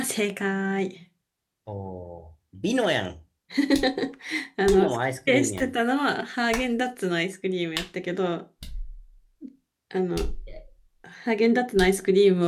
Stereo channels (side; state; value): both; identical; correlation 1.00